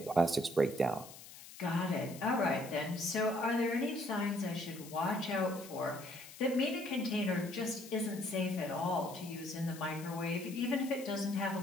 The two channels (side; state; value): left; noise; hiss, 16 dB below the sound